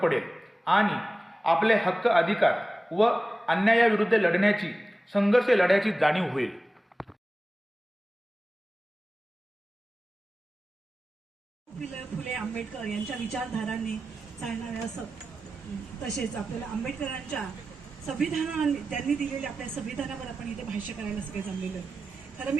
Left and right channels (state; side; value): normal; both; correlation 0.95